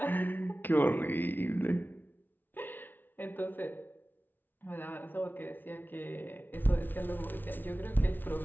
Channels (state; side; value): late; right; 0.091 ms